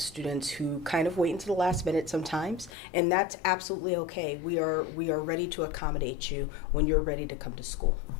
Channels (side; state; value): right; drops out; at 2.7 s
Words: students who kind of wait until the last minute sometimes, and that's absolutely okay. We are ready to accommodate you when you're ready to come to school.